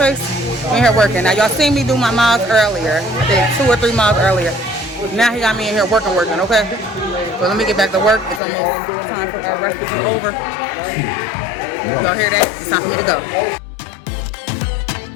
We're in here working. Now, y'all seen me do my miles earlier. I did 2 or 3 miles earlier. Now he got me in here working, okay? So let me get back to work. It's almost time for our rest to be over. Y'all hear that? It's time for me to go.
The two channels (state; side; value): drops out; right; at 8.4 s